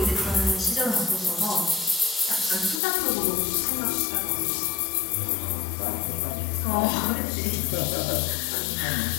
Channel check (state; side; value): drops out; right; at 2.8 s